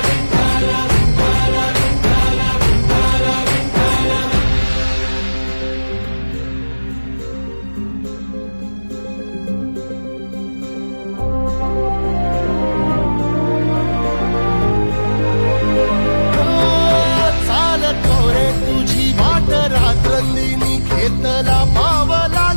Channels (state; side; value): inverted; both; correlation -1.00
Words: रात्रंदिनी घेतला पावला